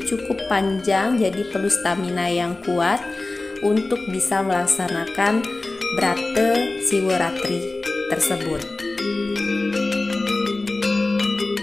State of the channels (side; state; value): right; quieter; 3.1 dB